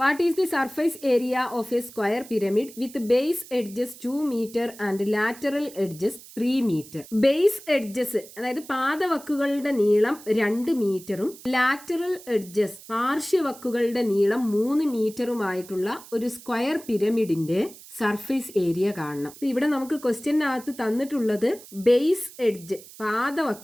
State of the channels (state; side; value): noise; right; hiss, 19 dB below the sound